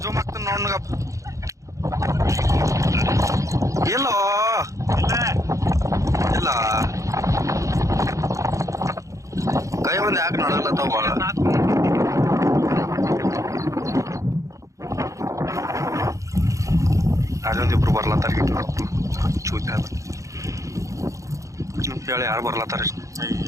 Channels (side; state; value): left; late; 0.15 ms